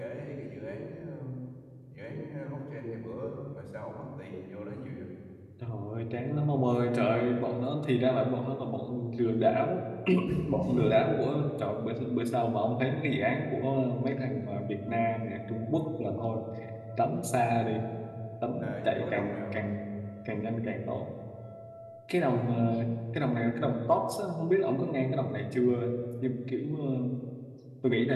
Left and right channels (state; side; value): identical; both; correlation 1.00